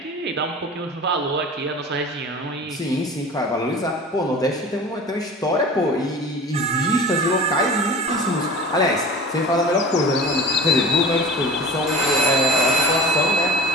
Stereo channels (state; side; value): normal; both; correlation 0.37